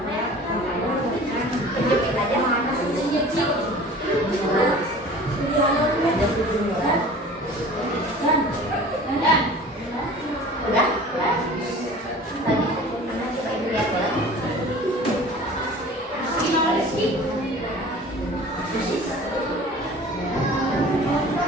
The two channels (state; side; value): normal; both; correlation 0.43